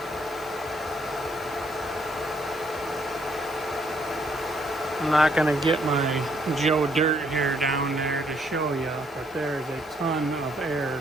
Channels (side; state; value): both; normal; correlation 0.70